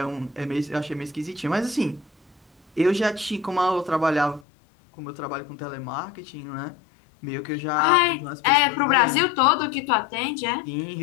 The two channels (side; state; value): right; drops out; at 4.5 s